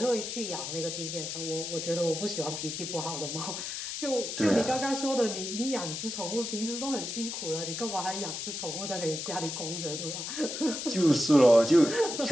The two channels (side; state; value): left; noise; hiss, 5 dB below the sound